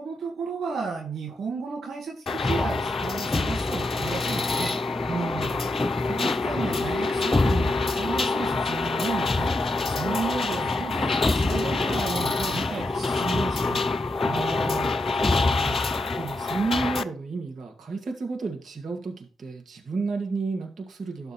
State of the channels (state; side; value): normal; both; correlation 0.84